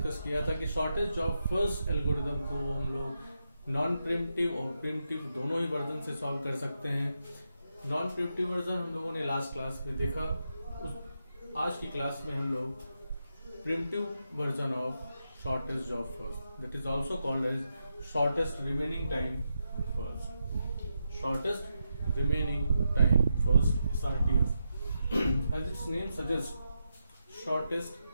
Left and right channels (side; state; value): both; inverted; correlation -0.85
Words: किया था कि शॉर्टेस्ट जॉब फर्स्ट एल्गोरिथम को हम लोग नॉन प्रिमिटिव और प्रिमिटिव दोनों ही वर्जन से सॉल्व कर सकते हैं। नॉन प्रिमिटिव वर्जन हम लोगों ने लास्ट क्लास में देखा। आज की क्लास में हम लोग preemptive version of shortest job first, that is also called as shortest remaining time first, shortest remaining time first SRTF as its name suggests, shortest